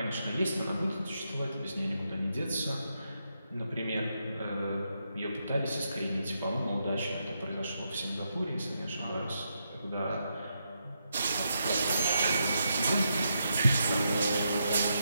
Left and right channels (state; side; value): inverted; both; correlation -0.82